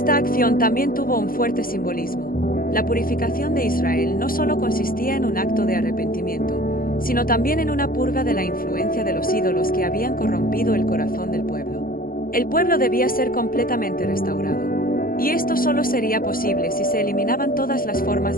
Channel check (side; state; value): right; late; 0.42 ms